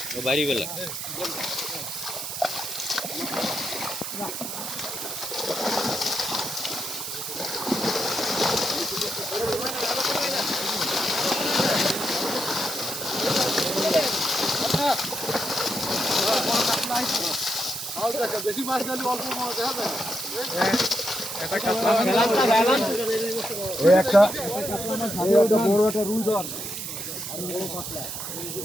বাড়ি বেলা বেশি মাছ দিলে অল্প মাছ দেখা যায় একটা বড় একটা রুই ধর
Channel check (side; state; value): right; noise; hiss, 6 dB below the sound